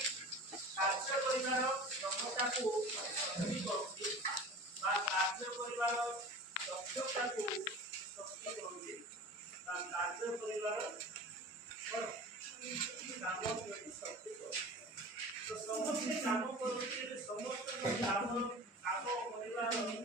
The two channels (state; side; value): normal; both; correlation 0.37